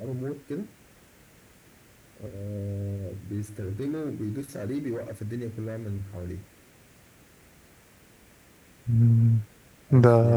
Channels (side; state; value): both; identical; correlation 1.00